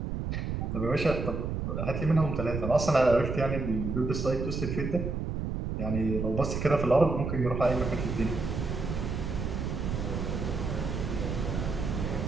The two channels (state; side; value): noise; right; rumble, 3 dB below the sound